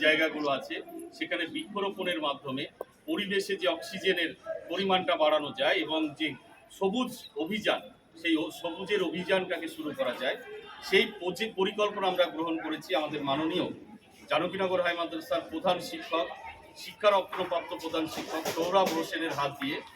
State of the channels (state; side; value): identical; both; correlation 1.00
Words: জায়গাগুলো আছে সেখানে বৃক্ষরোপণের মাধ্যমে পরিবেশে যে অক্সিজেনের পরিমাণটা বাড়ানো যায় এবং যে সবুজ অভিযান, সেই সবুজের অভিযানটাকে শুরু করা যায়, সেই পরিকল্পনা আমরা গ্রহণ করেছি। আমাদের মাননীয় জানকীনগর হাই মাদ্রাসার প্রধান শিক্ষক, শিক্ষারত্নপ্রাপ্ত প্রধান শিক্ষক সৌরভ হোসেনের হাত দিয়ে